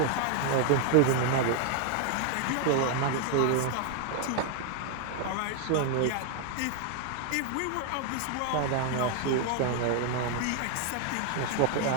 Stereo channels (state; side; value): different; both; correlation 0.00